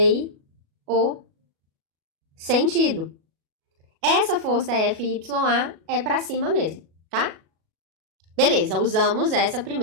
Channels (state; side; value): late; left; 37 ms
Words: o sentido. Essa força FYA é para cima mesmo, tá? Beleza, usamos essa